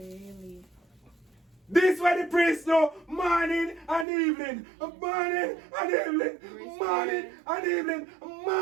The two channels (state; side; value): drops out; left; at 4.0 s